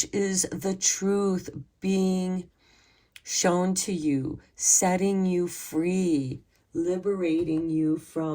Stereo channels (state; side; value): identical; both; correlation 1.00